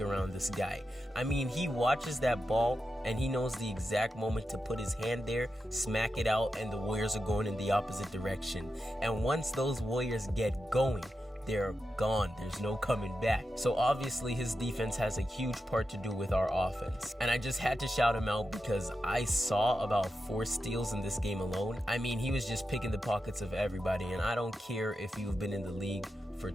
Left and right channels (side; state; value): both; normal; correlation 0.89